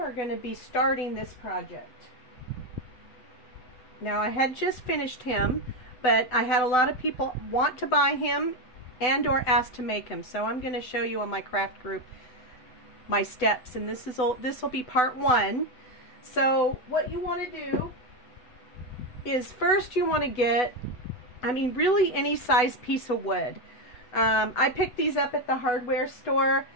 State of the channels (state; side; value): late; right; 8.0 ms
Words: going to be starting this project. Now, I had just finished him, but I had a lot of people want to buy him and or ask to make him. So I'm going to show you on my craft group my steps, and this will be part one. So what you want to do is first you want to get, really any size piece of wood. I picked these up at the hardware store